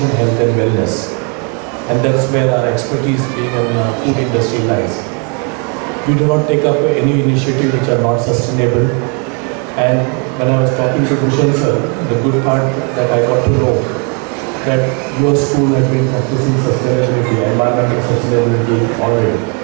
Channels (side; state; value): left; quieter; 36.6 dB